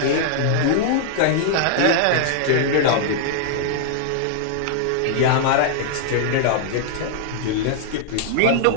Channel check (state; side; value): different; both; correlation -0.01